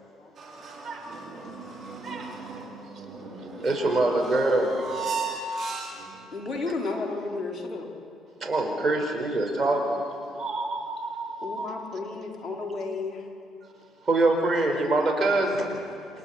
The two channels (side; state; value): both; normal; correlation 0.77